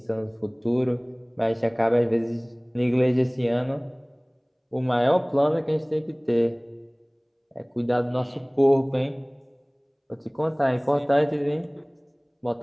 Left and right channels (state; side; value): identical; both; correlation 1.00